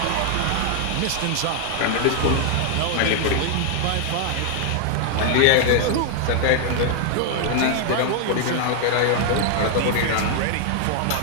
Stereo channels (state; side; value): different; both; correlation 0.00